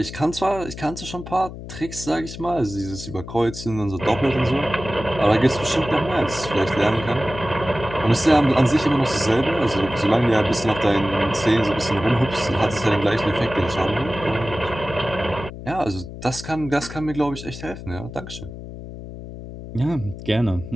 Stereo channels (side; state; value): left; noise; hum, 12 dB below the sound